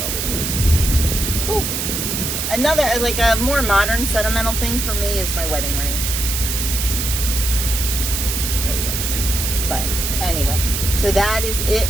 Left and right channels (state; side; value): noise; right; hiss, 2 dB below the sound